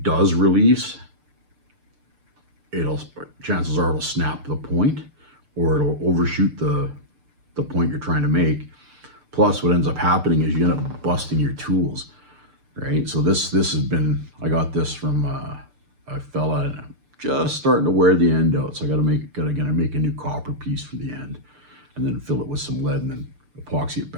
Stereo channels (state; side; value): late; left; 6.7 ms